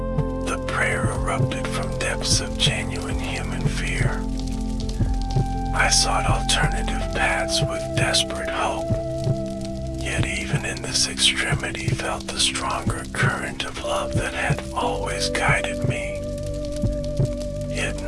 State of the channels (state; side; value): identical; both; correlation 1.00